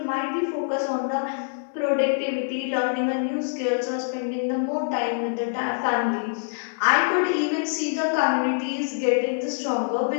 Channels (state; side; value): silent; right; digital silence